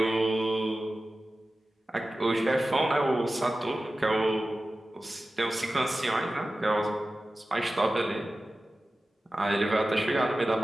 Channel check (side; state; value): both; normal; correlation 0.95